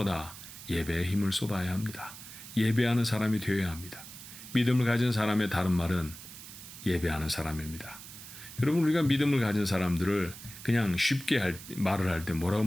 예배에 힘을 쏟아야 합니다. 예배하는 사람이 되어야 합니다. 믿음을 가진 사람의 다른 말은 예배하는 사람입니다. 여러분, 우리가 믿음을 가진 사람들을 그냥 쉽게 말을 할 때 뭐라고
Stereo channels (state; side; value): noise; right; hiss, 14 dB below the sound